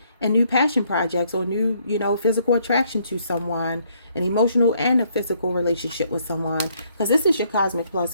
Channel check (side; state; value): both; inverted; correlation -0.68